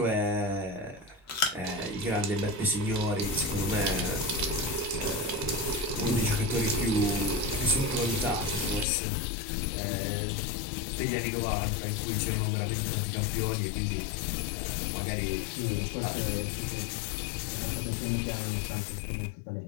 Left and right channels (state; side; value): drops out; right; at 8.8 s